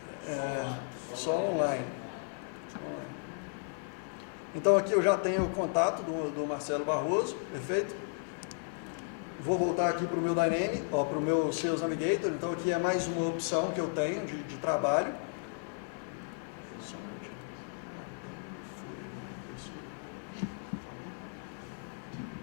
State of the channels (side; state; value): right; silent; 55 dB below the other